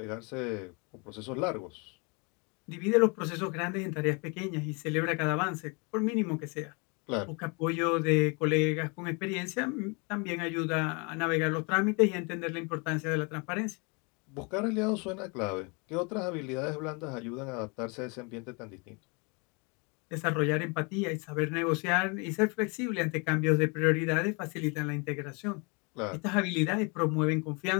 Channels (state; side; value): quieter; right; 31.5 dB